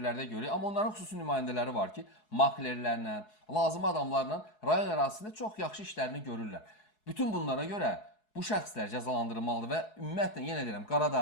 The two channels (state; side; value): late; right; 4.7 ms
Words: görürük. Amma onların xüsusi nümayəndələri var ki, maklerlərlə, lazım adamlarla rayon ərazisində çox yaxşı işlərini görürlər. Bütün bunlara görə bu şəxslər cəzalandırılmalıdır və ümumiyyətlə yenə deyirəm,